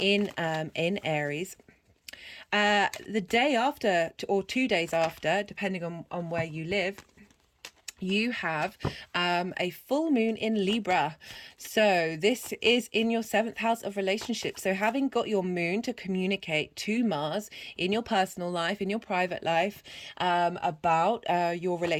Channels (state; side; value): identical; both; correlation 1.00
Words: Aries. The day after, or 2 days after, depending on where you live, you have a full moon in Libra. So this is in your 7th house of relationships. So having got your moon to communicate to Mars in your personal life, in your private life, about your